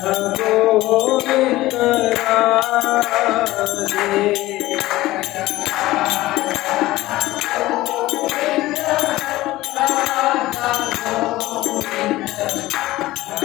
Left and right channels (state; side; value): quieter; right; 17.3 dB